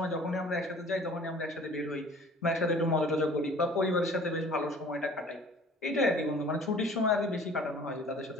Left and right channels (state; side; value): normal; both; correlation 0.49